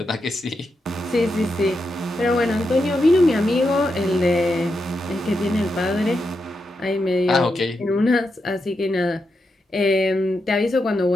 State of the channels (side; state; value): both; normal; correlation 0.85